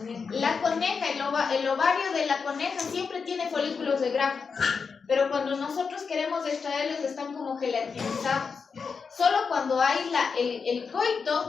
La coneja, el ovario de la coneja siempre tiene folículos de grafo, pero cuando nosotros queremos extraerlos están como gelatinizados. Solo cuando hay el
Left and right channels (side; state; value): right; quieter; 5.4 dB